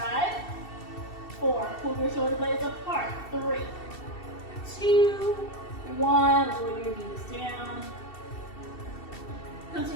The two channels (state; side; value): late; right; 2.7 ms